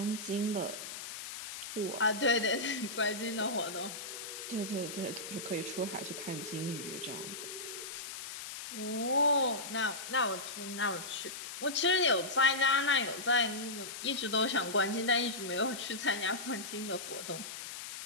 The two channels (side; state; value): left; noise; hiss, 9 dB below the sound